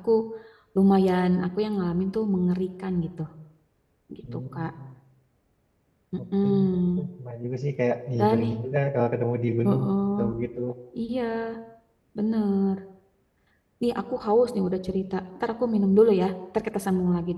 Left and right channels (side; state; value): both; identical; correlation 1.00